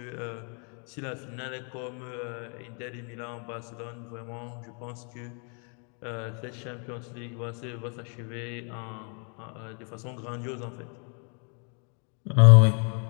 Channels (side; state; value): right; quieter; 38.5 dB